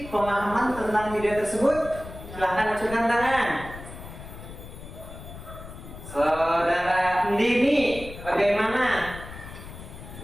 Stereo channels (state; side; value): noise; left; rumble, 13 dB below the sound